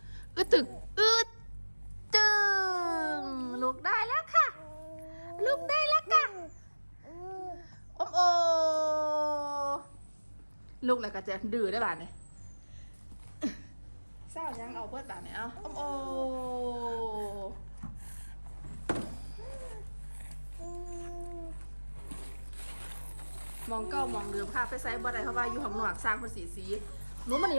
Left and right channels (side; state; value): both; inverted; correlation -1.00